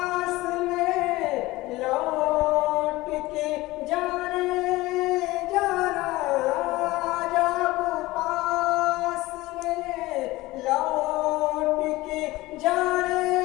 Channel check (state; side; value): quieter; right; 19.3 dB